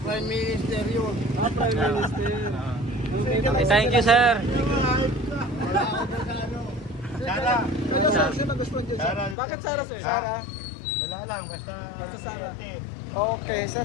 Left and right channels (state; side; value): drops out; right; at 9.3 s